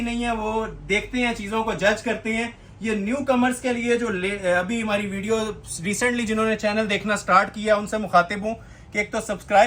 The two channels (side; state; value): both; identical; correlation 1.00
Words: नहीं है, वो देखते हैं चीजों को, जज करते हैं। ये न्यू कमर्स के लिए जो अभी हमारी वीडियो रिसेंटली जिन्होंने चैनल देखना स्टार्ट किया, उनसे मुखातिब हूँ कि एक तो